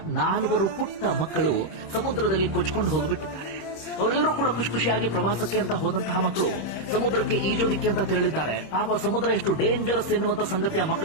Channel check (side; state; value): right; late; 26 ms